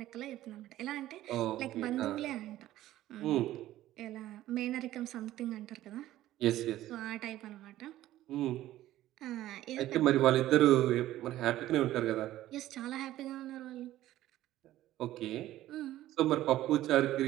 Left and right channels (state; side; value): quieter; left; 14.4 dB